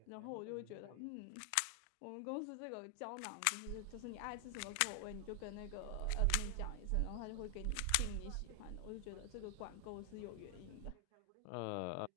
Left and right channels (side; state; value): both; different; correlation 0.00